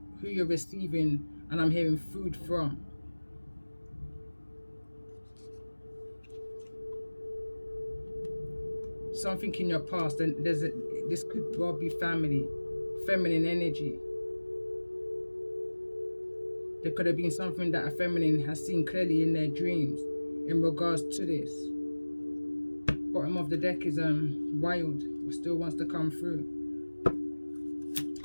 who you're receiving, and I'm hearing food from. Something in your past, and this could well be family, feminine energy. There could have been something that a feminine has seen clearly in their dreams in regards to this. Bottom of the deck is wild, still wants to come through.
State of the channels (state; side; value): inverted; both; correlation -1.00